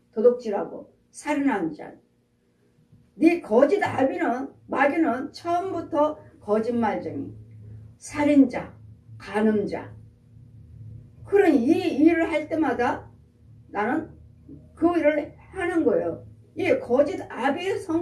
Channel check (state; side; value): identical; both; correlation 1.00